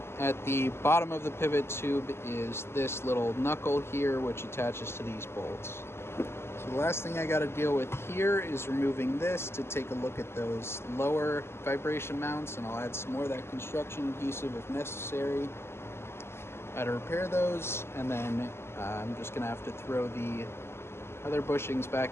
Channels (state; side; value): late; right; 0.12 ms